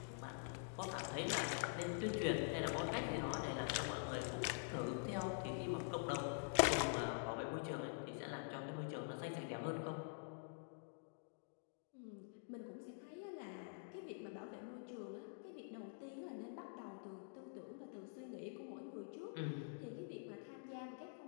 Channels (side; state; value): right; silent; digital silence